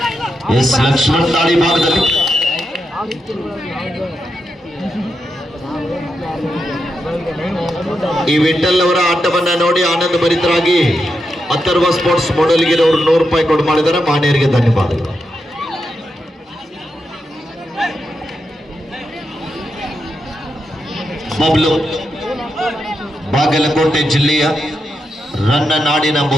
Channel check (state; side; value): normal; both; correlation 0.85